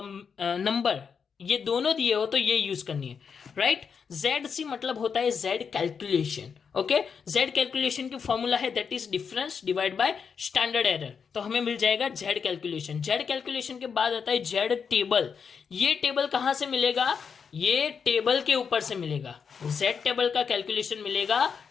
नंबर ये दोनों दिए हो तो ये यूज करनी है, राइट। जेड सी मतलब होता है Z calculation, okay. Z calculation की फॉर्मूला है that is difference divide by standard error, तो हमें मिल जाएगा जेड कैलकुलेशन। जेड कैलकुलेशन के बाद आता है जेड टेबल। ये टेबल कहां से मिलेगा, ये टेबल के ऊपर से मिलेगा, जेड टेबल का कैलकुलेशन मिलेगा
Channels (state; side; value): quieter; right; 6.3 dB